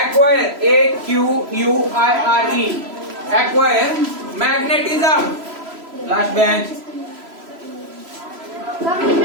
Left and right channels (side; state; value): left; late; 3.0 ms